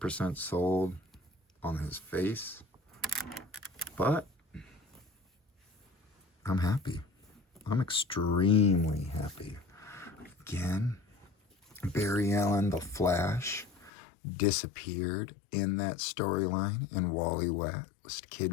sold on his face, but I'm happy. I'm extremely happy. Again, Barry Allen, the Flash, disappeared in that storyline, and Wally West,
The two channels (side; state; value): right; drops out; at 13.9 s